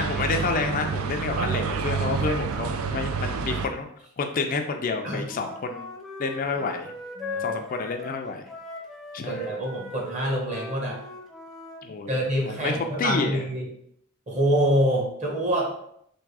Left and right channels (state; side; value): normal; both; correlation 0.33